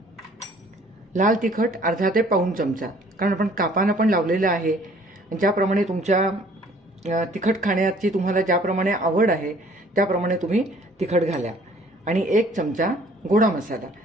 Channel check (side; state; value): both; normal; correlation 0.56